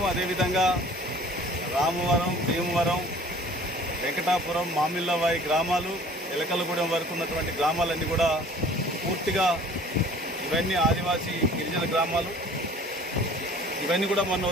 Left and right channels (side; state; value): both; normal; correlation 0.49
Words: అదేవిధంగా రామవరం, భీమవరం, వెంకటాపురం, మామిళ్ళవాయి గ్రామాలు, ఎలకలగూడెం వరకు ఉన్నటువంటి గ్రామాలన్నీ కూడా పూర్తిగా ఇవన్నీ ఆదివాసీ గిరిజన గ్రామాలు. ఇవన్నీ కూడా